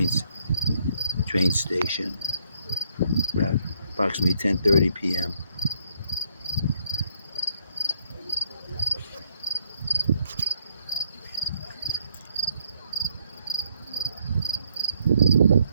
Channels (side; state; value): both; inverted; correlation -0.69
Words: train station, about approximately 10:30 p.m.